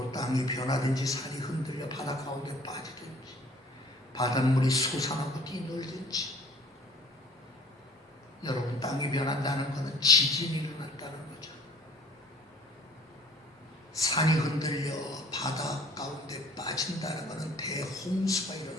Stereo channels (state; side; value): normal; both; correlation 0.52